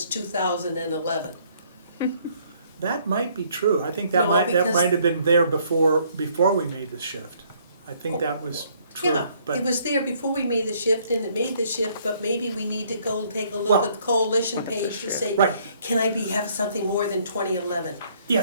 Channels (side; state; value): both; inverted; correlation -0.64